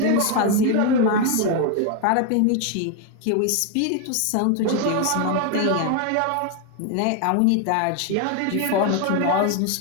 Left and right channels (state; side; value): different; both; correlation 0.01